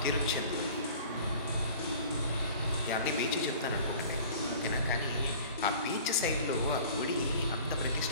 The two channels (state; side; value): inverted; both; correlation -0.46